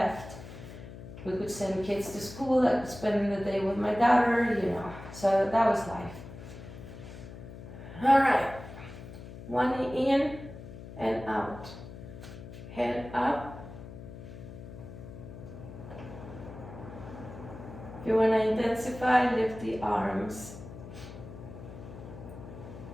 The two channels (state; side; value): noise; left; hum, 13 dB below the sound